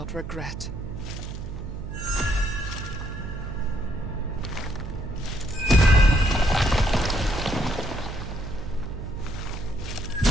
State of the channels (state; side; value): noise; right; hum, 8 dB below the sound